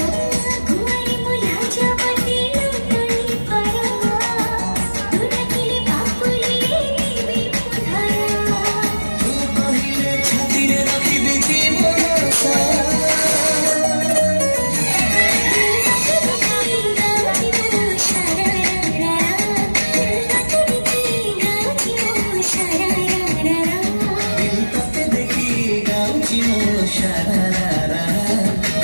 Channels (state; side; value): inverted; both; correlation -1.00